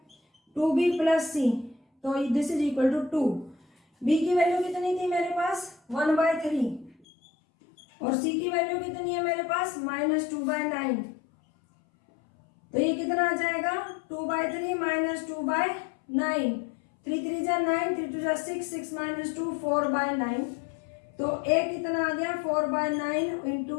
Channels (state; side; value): drops out; right; at 7.1 s